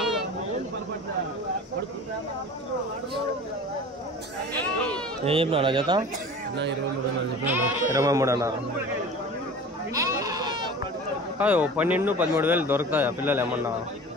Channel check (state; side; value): normal; both; correlation 0.39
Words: ఏం చెప్పినా జత? 23 అన్నారు. కాదు 12-13 దొరుకుతాయా పిల్లలు ఏమన్నా?